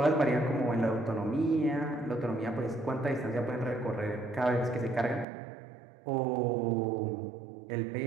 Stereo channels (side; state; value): left; drops out; at 5.2 s